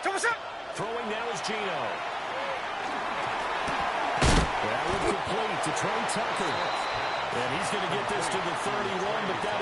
Throwing now is Gino. That would complete to Trey Tucker. And he's going to get this to the 31, but that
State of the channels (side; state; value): both; identical; correlation 1.00